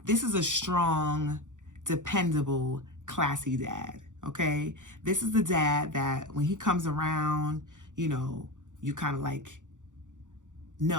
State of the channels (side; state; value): left; late; 0.86 ms